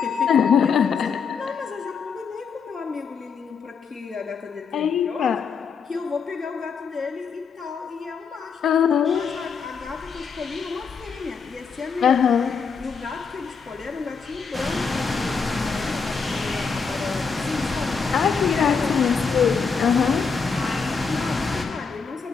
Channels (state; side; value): quieter; right; 5.7 dB